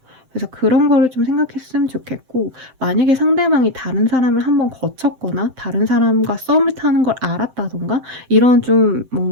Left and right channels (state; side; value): late; left; 7.7 ms